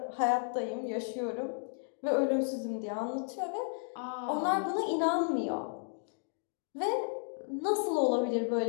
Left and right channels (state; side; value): silent; right; digital silence